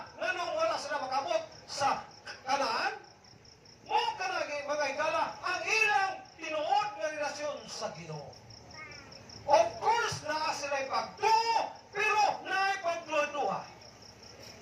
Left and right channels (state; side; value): identical; both; correlation 1.00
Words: nganong wala sila makabot sa Kanaan? Mo kanagi mga higala ang ilang tinuod nga relasyon sa Ginoo. Of course, naa sila'y pagtuo, pero naa'y pagduha-duha.